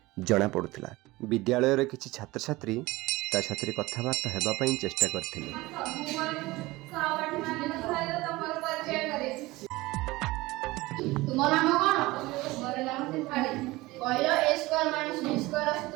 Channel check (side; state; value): left; quieter; 20.2 dB